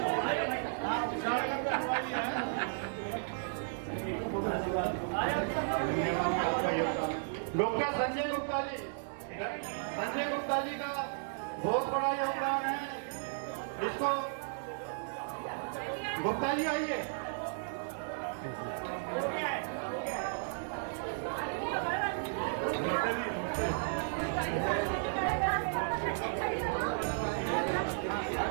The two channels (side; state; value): left; silent; 55 dB below the other